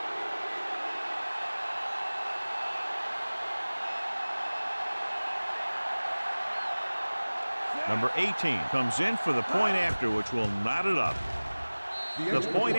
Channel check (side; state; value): both; inverted; correlation -1.00